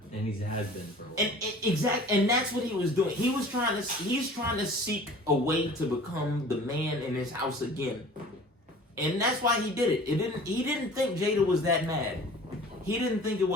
And he has been for a while. And that's what he was doing. He's trying to seek a way to become the man in his house again. And that's why he did it. He didn't think Jada was that mad. He didn't think it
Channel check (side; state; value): both; normal; correlation 0.45